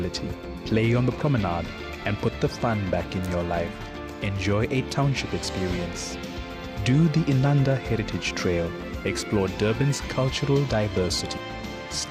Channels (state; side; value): identical; both; correlation 1.00